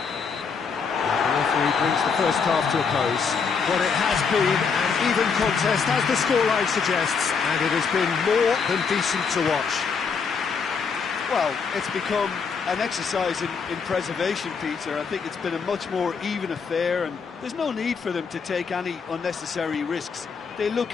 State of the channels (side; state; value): right; quieter; 5.7 dB